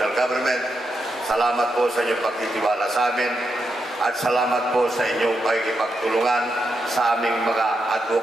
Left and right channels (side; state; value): both; normal; correlation 0.84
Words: government. Salamat po sa inyong pagtitiwala sa amin at salamat po sa inyong pakikipagtulungan sa aming mga